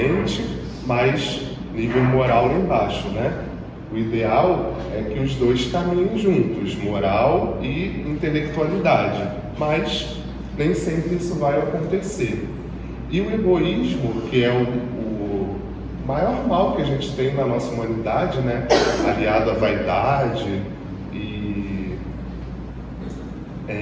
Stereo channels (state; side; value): identical; both; correlation 1.00